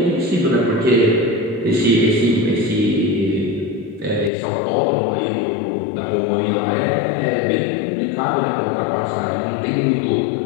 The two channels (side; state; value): right; drops out; at 4.3 s